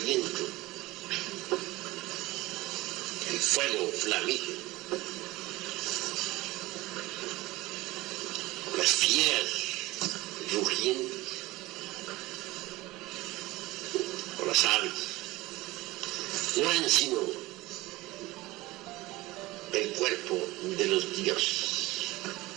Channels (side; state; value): left; quieter; 19.5 dB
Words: el fuego flamígero, las fieras rugientes o las aves, no eran sino el cuerpo de los dioses.